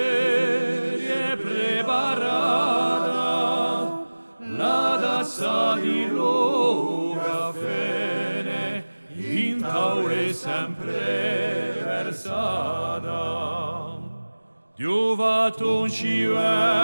è preparata, la tazza di lo caffè in tavola è sempre versata. Dio fatto ci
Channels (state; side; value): inverted; both; correlation -1.00